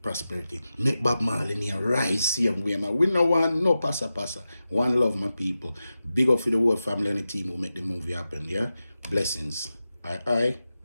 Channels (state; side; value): inverted; both; correlation -0.92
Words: prosperity. Make Bob Marley near rise same way, man. We no want no passa. One love, my people. Big up for the whole family and the team who make the movie happen, yeah? Blessings. I